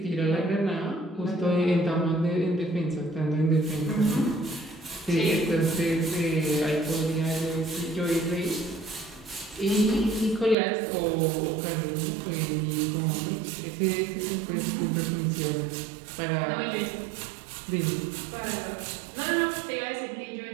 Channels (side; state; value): left; drops out; at 10.6 s